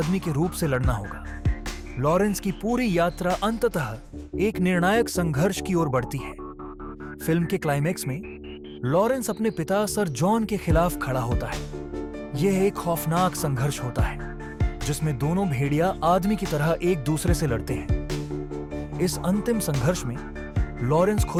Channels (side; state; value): both; identical; correlation 1.00